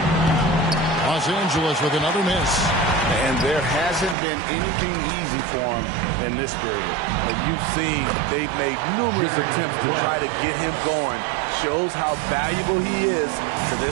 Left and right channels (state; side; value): drops out; left; at 4.2 s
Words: Los Angeles with another miss. And there hasn't been anything easy for him in this period. And you've seen they've made numerous attempts to try to get him going. Shows how valuable he is to